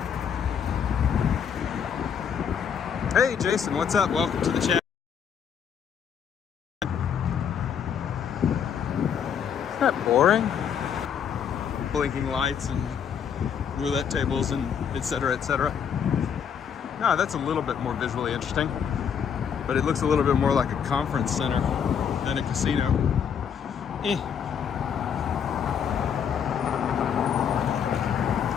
Hey Jason, what's up? Welcome to the chat. Isn't that boring? Blinking lights and roulette tables and etc., etc. No, that's a little bit more visually interesting, but it looks a little bit more like a conference center than a casino.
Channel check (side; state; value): right; quieter; 7.7 dB